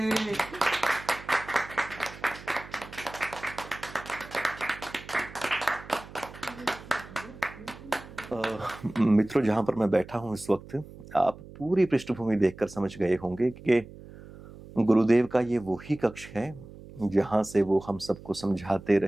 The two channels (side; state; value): right; noise; hum, 17 dB below the sound